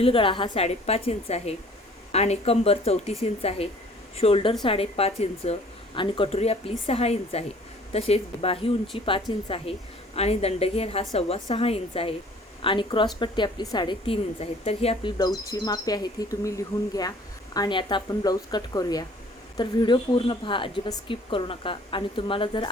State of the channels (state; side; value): normal; both; correlation 0.53